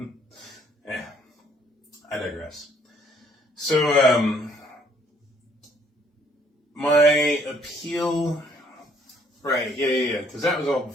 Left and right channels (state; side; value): normal; both; correlation 0.64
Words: I digress. So, my appeal, right, yeah, because that was all